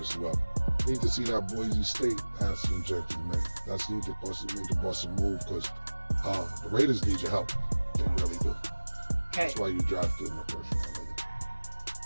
well. Need to see that Boise State Ashton Genty, man. That's need to bust a move because the Raiders need your help. They really do. Okay. That's why you drafted in the first round.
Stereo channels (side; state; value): both; inverted; correlation -1.00